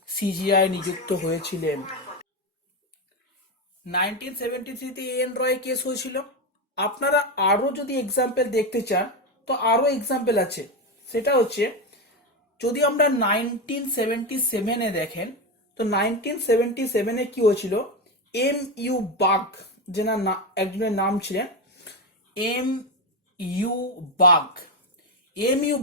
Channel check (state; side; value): normal; both; correlation 0.13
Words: সিজিআই নিযুক্ত হয়েছিলেন। 1973 এ এন রয় কেস হয়েছিল। আপনারা আরো যদি এক্সাম্পল দেখতে চান তো আরো এক্সাম্পল আছে, সেটা হচ্ছে যদি আমরা 1977 দেখেন তো 1977 কি হয়েছিল, এম ইউ বাগ একজনের নাম ছিলেন M U Bag. M U